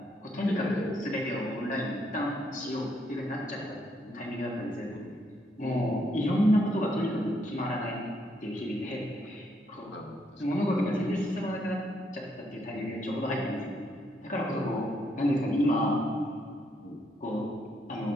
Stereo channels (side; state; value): both; normal; correlation 0.74